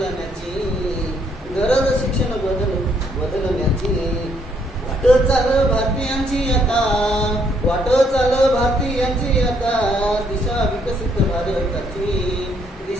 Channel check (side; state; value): both; normal; correlation 0.70